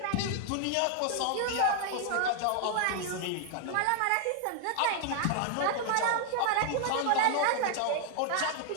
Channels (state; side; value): different; both; correlation 0.00